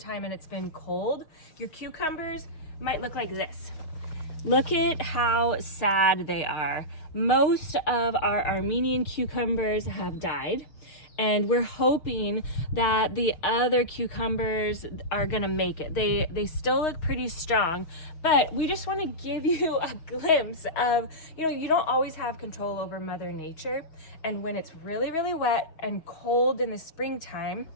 and it's been cold, your cucumbers might look like this. Look at how sad they are. Most of our Armenian cucumbers have died, and we're hoping that the other cucumbers are gonna make it. They still look pretty strong, but we just wanna give you a glimpse of, you don't always have control over Mother Nature, and when it's really, really wet and cold in the springtime,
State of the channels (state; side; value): late; right; 6.1 ms